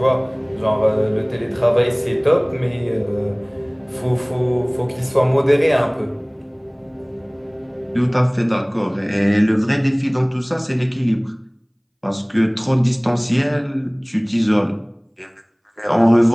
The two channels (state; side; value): identical; both; correlation 1.00